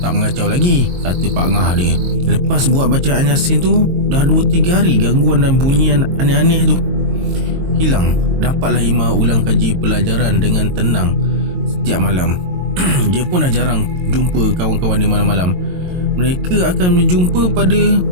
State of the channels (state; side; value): late; left; 22 ms